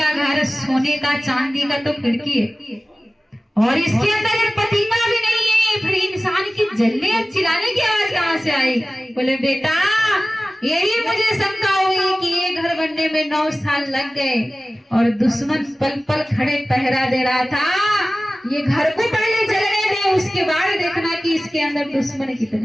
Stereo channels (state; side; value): normal; both; correlation 0.97